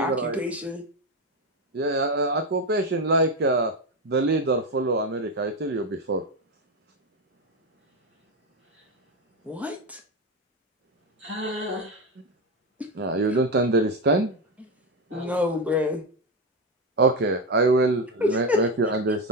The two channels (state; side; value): normal; both; correlation 0.12